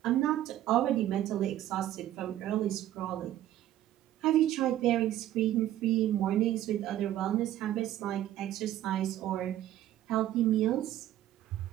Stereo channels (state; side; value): quieter; left; 13.0 dB